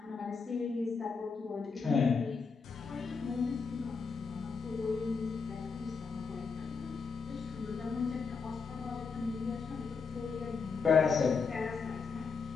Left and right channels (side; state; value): right; quieter; 5.2 dB